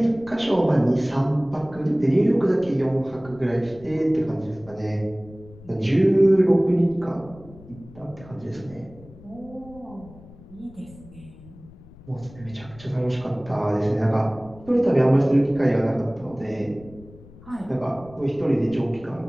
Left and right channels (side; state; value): left; noise; rumble, 21 dB below the sound